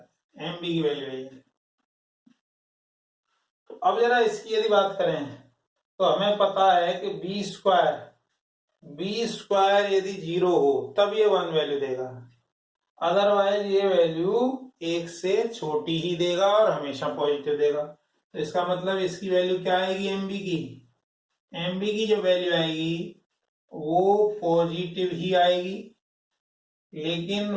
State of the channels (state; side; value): identical; both; correlation 1.00